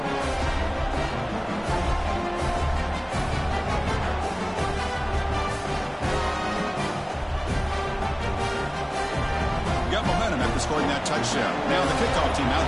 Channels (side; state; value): both; identical; correlation 1.00